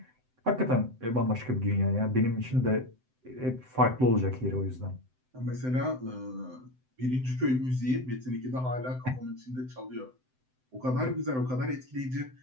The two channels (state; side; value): late; left; 7.8 ms